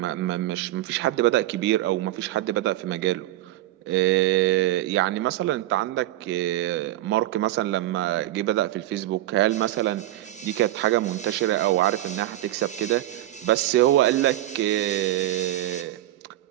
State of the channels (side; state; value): left; quieter; 14.8 dB